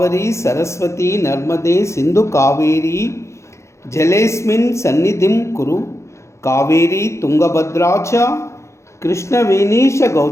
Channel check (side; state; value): right; late; 0.14 ms